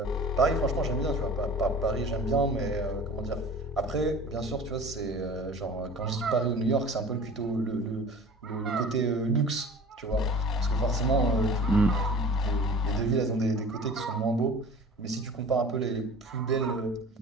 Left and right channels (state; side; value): normal; both; correlation 0.41